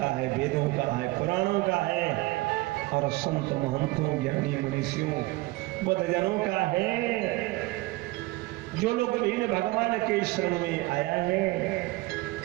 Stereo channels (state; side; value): quieter; left; 21.1 dB